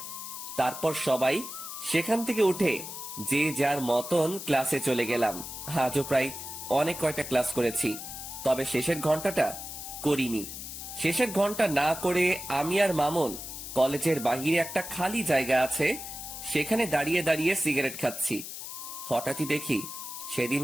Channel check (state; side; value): noise; left; hiss, 9 dB below the sound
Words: তারপর সবাই সেখান থেকে উঠে যে যার মতন ক্লাসে চলে গেলাম। আজও প্রায় অনেক কয়টা ক্লাস করেছি, তবে শেষের ঘন্টাটা করিনি। শেষের ঘন্টা না করে আমি আর মামুন কলেজের বাহিরে একটা খালি জায়গা আছে, সেখানে দাঁড়িয়ে দাঁড়িয়ে সিগারেট খাচ্ছি। হঠাৎই দেখি সেদিন